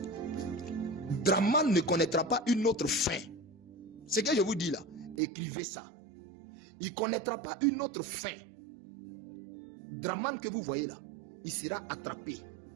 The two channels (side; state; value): left; drops out; at 5.2 s